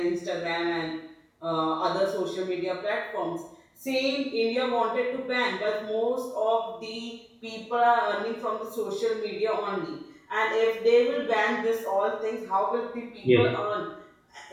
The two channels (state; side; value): identical; both; correlation 1.00